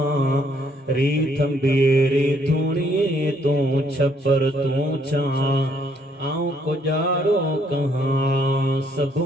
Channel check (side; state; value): both; normal; correlation 0.68